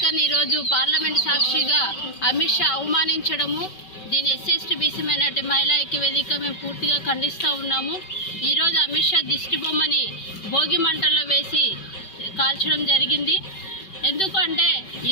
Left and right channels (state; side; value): late; right; 5.2 ms